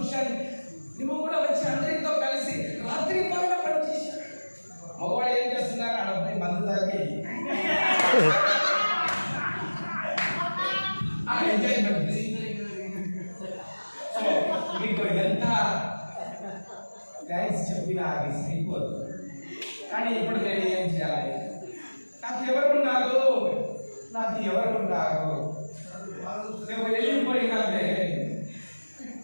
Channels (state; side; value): inverted; both; correlation -1.00